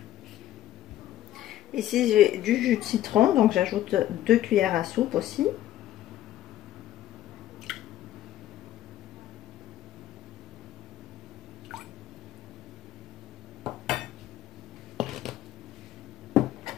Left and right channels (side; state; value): right; quieter; 13.1 dB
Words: Ici, j'ai du jus de citron, donc j'ajoute 2 cuillères à soupe aussi.